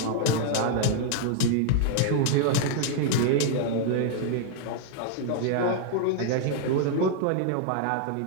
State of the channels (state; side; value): different; both; correlation 0.00